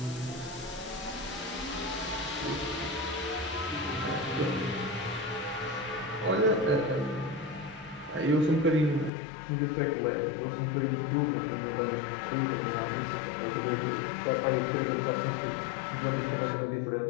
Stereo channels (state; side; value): drops out; right; at 9.1 s